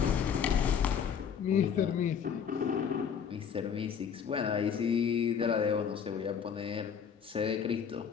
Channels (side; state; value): right; quieter; 7.4 dB